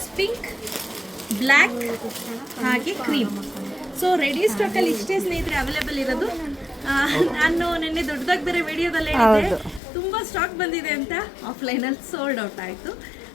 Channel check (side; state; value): right; drops out; at 9.8 s